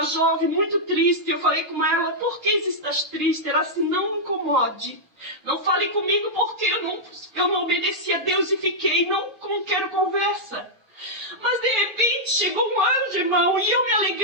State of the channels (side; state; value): left; late; 6.4 ms